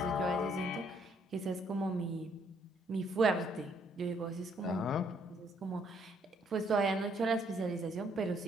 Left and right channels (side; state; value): both; normal; correlation 0.68